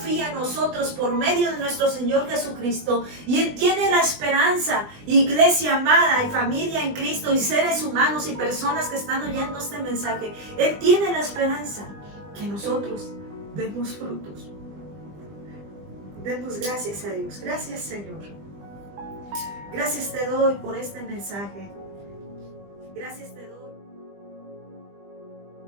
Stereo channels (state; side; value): late; left; 20 ms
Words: en nosotros por medio de nuestro Señor Jesucristo. Y Él tiene la esperanza, iglesia amada y familia en Cristo y seres humanos y personas que están oyendo este mensaje. Él tiene la esperanza que nosotros demos frutos. Demos gracias a Dios. Gracias, Señor. Gracias te doy por este mensaje. Gracias te doy.